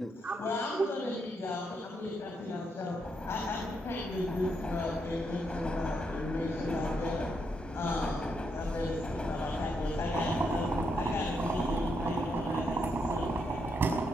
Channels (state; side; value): normal; both; correlation 0.79